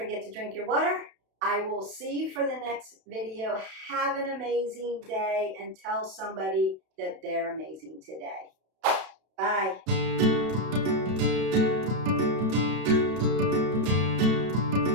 to drink your water. I will see you for the next video. Have an amazing day and tell somebody that they're amazing today. Bye.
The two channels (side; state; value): left; late; 32 ms